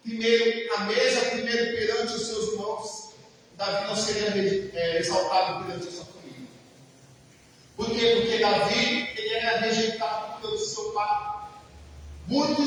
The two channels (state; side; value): identical; both; correlation 1.00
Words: primeiro a mesa, primeiro perante os seus irmãos, Davi não seria exaltado perante a sua família. Por quê? Porque Davi, ele era rejeitado pelo seu pai.